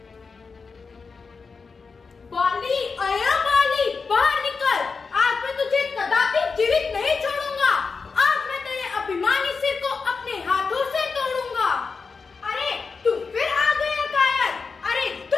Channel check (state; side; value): quieter; right; 4.8 dB